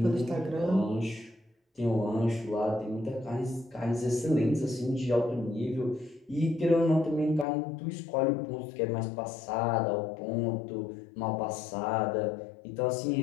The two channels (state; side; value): drops out; right; at 7.5 s